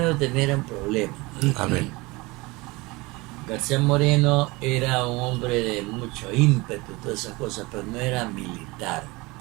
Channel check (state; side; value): quieter; left; 23.5 dB